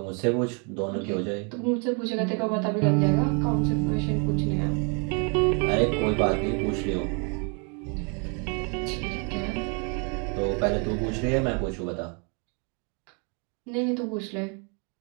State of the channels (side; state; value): left; quieter; 36.1 dB